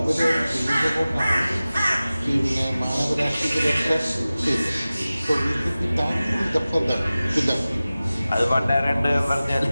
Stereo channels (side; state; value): both; inverted; correlation -0.96